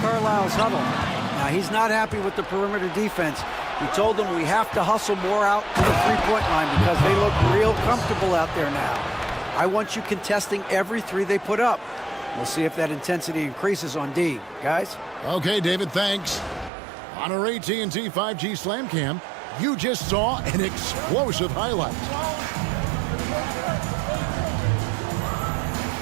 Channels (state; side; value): drops out; left; at 16.7 s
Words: huddle. Now, he's not happy with the perimeter defense. He told them we have to hustle more out to the three-point line because they look real comfortable out there now. I want you contesting every 3 they put up. We'll see if that intensity increases on D. Guys? Okay, David, thanks. On our AT&T 5G Slam Cam, you just saw an explosive highlight.